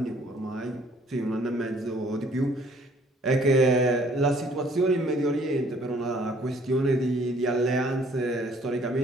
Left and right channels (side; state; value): both; normal; correlation 0.59